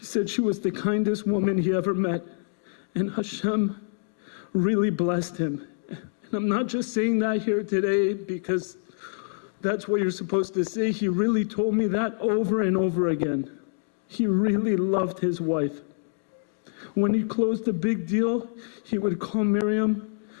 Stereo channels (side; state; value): right; silent; digital silence